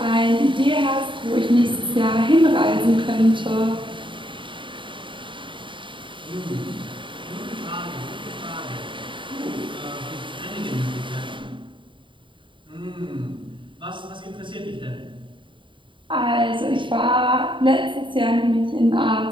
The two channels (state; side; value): late; left; 0.24 ms